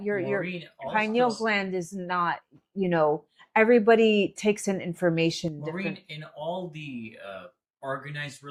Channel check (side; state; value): both; identical; correlation 1.00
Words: your Maureen, pineal also, gland is not, everybody takes in information Maureen, different. in all the organized